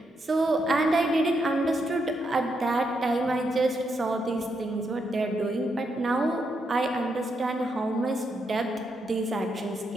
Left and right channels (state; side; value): normal; both; correlation 0.80